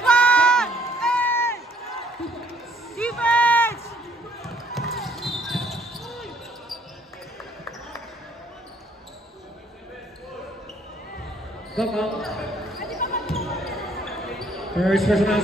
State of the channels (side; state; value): both; normal; correlation 0.65